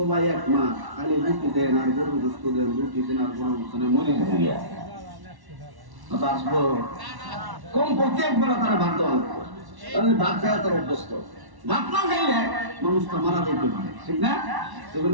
এক মাস খালি রুটি দেন আর গরু গোস্ত দেন, রুটি দেন আর গরু গোস্ত দেন, মরে যাবে। আসবো কমপক্ষে একবার তারা ভাত দেওয়া লাগবে, তাহলে ভাত খাওয়া তার অভ্যস্ত। ভাত না খাইলে মানুষটা মারা যেতে পারে, ঠিক না?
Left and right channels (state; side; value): late; left; 1.1 ms